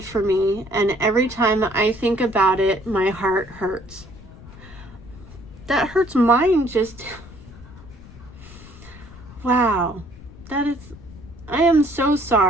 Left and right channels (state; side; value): noise; left; rumble, 18 dB below the sound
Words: for me, and every time I think about it, my heart hurts. That hurts mine just... Wow. I am so